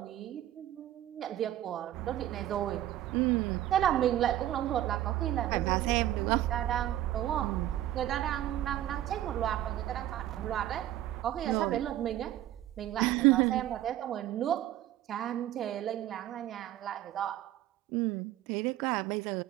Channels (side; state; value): left; quieter; 13.1 dB